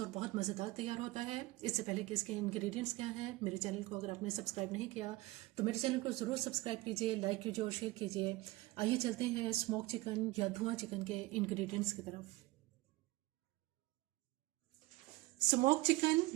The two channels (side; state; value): left; quieter; 20.0 dB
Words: और बहुत मज़ेदार तैयार होता है। इससे पहले कि इसके इंग्रेडिएंट्स क्या हैं, मेरे चैनल को अगर आपने सब्सक्राइब नहीं किया तो मेरे चैनल को ज़रूर सब्सक्राइब कीजिए, लाइक कीजिए और शेयर कीजिए। आइए चलते हैं स्मोक चिकन या धुआं चिकन के इंग्रेडिएंट्स की तरफ। स्मोक चिकन